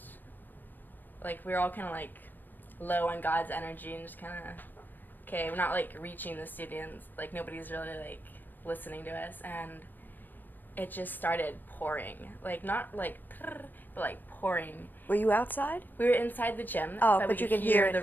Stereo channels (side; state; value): right; late; 0.089 ms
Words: we were all kind of, low on God's energy, and just kind of, okay, we're not, reaching the students, nobody's really, listening to us, and it just started pouring, not, but, pouring. Were you outside? We were inside the gym, but we you could could hear the